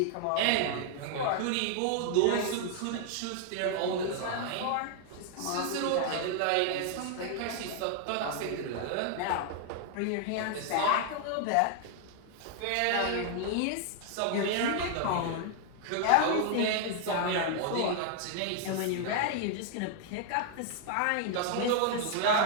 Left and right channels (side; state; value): both; different; correlation 0.00